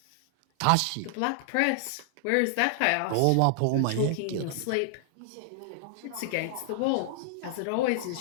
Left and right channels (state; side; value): different; both; correlation -0.01